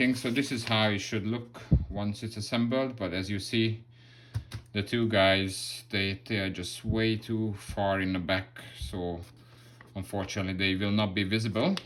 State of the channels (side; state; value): both; identical; correlation 1.00